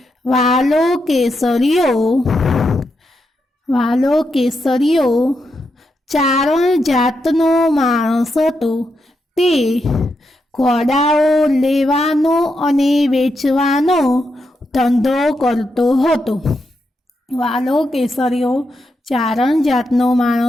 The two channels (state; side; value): normal; both; correlation 0.84